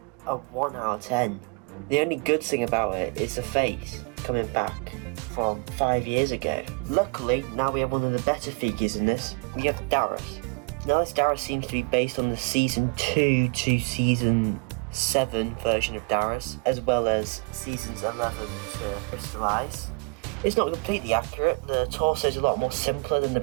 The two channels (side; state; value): left; quieter; 34.0 dB